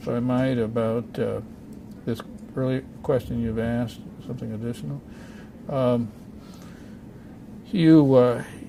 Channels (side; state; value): both; identical; correlation 1.00